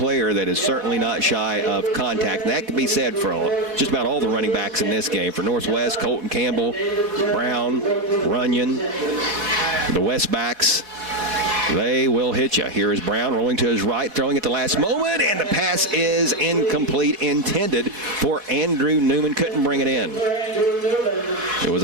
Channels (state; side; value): late; left; 4.2 ms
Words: that is certainly not shy of contact. And that can be said for just about all the running backs in this game. For Northwest, Colton Campbell, Brown, Runyon, the West backs, they will hit you. Here is Brown rolling to his right, throwing at the last moment, and the pass is incomplete, intended for Andrew Newman. Couldn't bring it in. It was